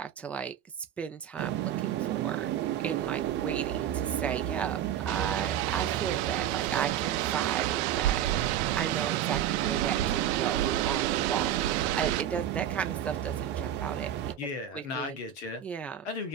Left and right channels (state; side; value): quieter; left; 10.0 dB